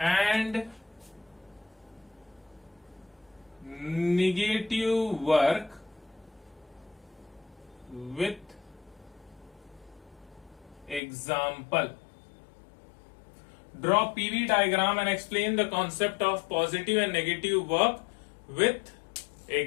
and negative work with example। Draw PV diagram and explain the concept of positive and negative work with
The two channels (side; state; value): right; drops out; at 11.0 s